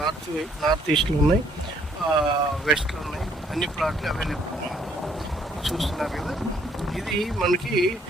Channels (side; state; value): both; normal; correlation 0.65